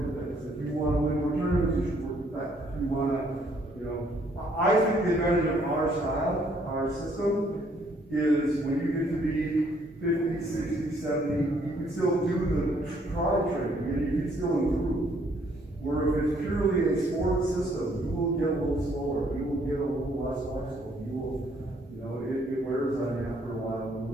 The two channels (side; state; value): both; normal; correlation 0.66